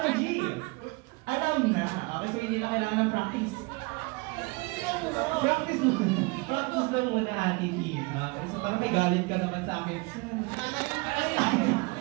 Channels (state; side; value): quieter; left; 27.4 dB